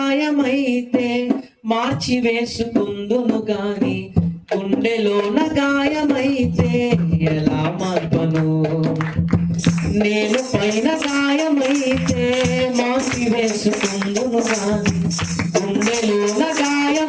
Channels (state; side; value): identical; both; correlation 1.00